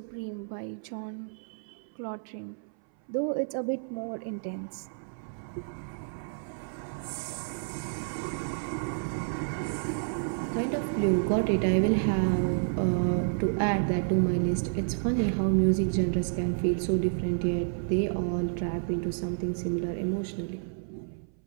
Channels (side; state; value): left; silent; 58 dB below the other